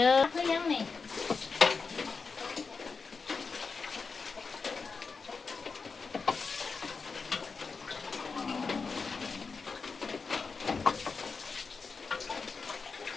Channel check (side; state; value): right; quieter; 4.8 dB